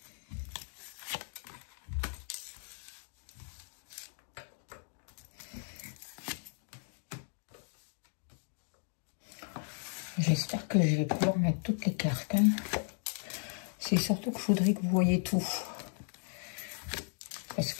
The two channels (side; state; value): right; silent; 54 dB below the other